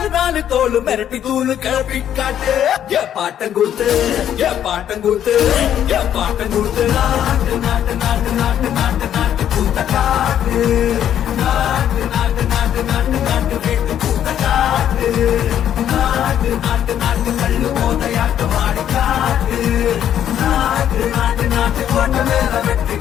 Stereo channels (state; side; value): quieter; right; 10.2 dB